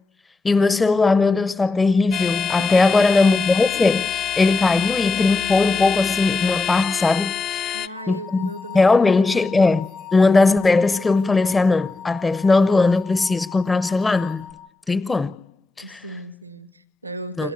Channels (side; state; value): right; quieter; 3.5 dB